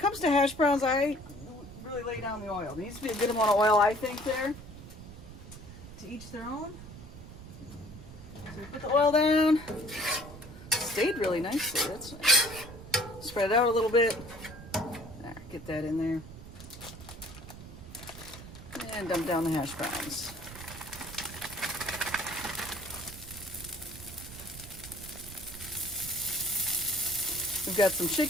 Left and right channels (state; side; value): noise; right; rumble, 14 dB below the sound